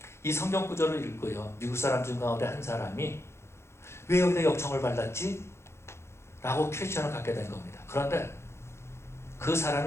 이 성경 구절을 읽고요, 미국 사람 중 가운데 한 사람이 왜 여기다 역청을 발랐지? 라고 퀘스천을 갖게 된 겁니다. 그런데 그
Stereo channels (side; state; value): right; late; 0.13 ms